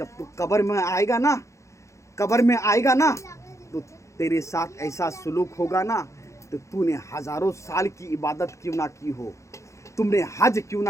तू कब्र में आएगा ना, तो तेरे साथ ऐसा सुलूक होगा ना, तो तूने हजारों साल की इबादत क्यों ना की हो, तुमने हज क्यों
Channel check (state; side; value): late; right; 0.15 ms